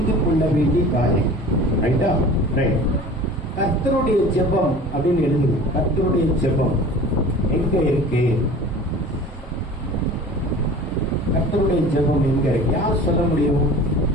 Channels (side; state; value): both; normal; correlation 0.41